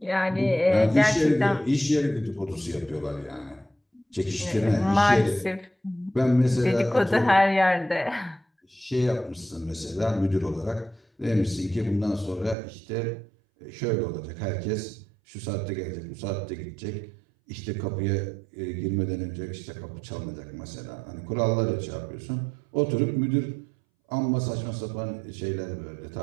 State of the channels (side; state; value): left; drops out; at 12.6 s